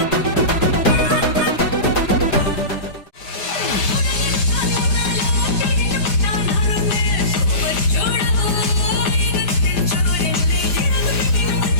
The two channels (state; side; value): late; right; 5.0 ms